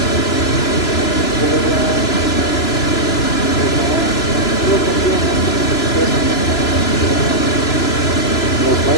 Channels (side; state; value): right; late; 3.0 ms